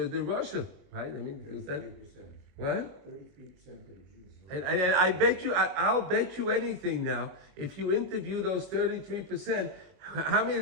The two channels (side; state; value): left; late; 22 ms